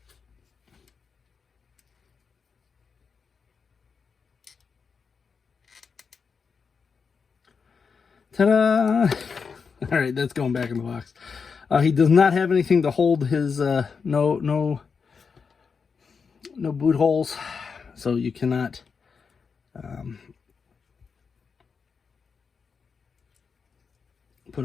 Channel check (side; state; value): right; quieter; 5.6 dB